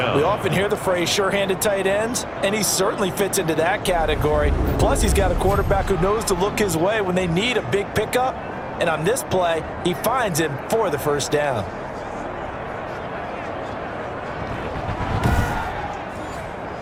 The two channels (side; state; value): both; identical; correlation 1.00